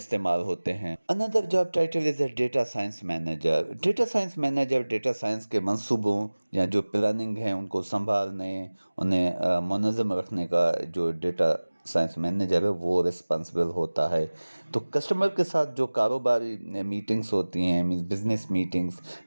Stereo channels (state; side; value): inverted; both; correlation -1.00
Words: ہوتے ہیں۔ Another job title is a data science manager. Data science manager data science کے منصوبوں یا جو پلاننگ ہیں ان کو سنبھالنے، انہیں منظم رکھنے کا جو ڈیٹا سائنس مینیجر ہے وہ رسپانسبل ہوتا ہے۔ تو کسٹمر کے ساتھ جو کاروباری میٹنگز ہوتی ہیں، means business meetings,